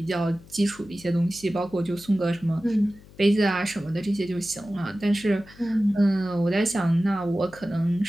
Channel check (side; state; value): left; noise; hum, 22 dB below the sound